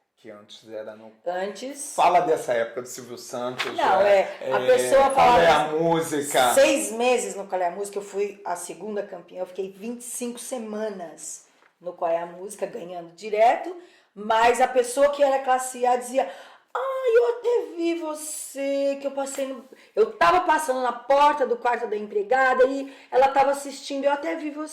Que antes era no... Antes... Fala dessa época do Silvio Santos. Não, a pessoa falava... Qual é a música? 6 meses no Qual é a Música, eu fui a segunda campeã, eu fiquei 25 semanas no Qual é a Música, ganhando direto, mas a pessoa que era classe A dizia, eu até vi você, que eu passei no... Eu tava passando na porta do quarto da empregada e ela tava assistindo, eu até vi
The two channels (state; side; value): identical; both; correlation 1.00